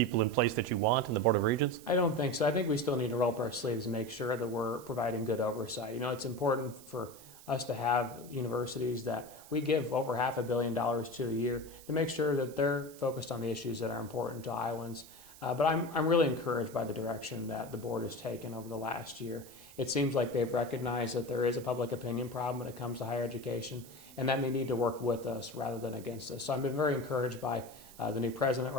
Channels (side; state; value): right; noise; hiss, 19 dB below the sound